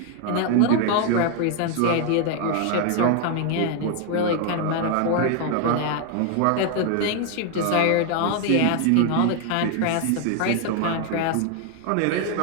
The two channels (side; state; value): both; different; correlation 0.00